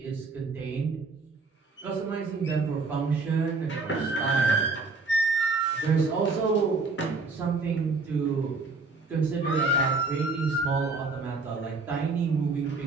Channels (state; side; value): quieter; left; 4.0 dB